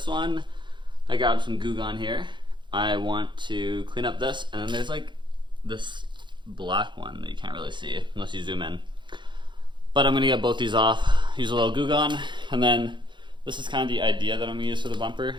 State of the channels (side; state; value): left; late; 0.23 ms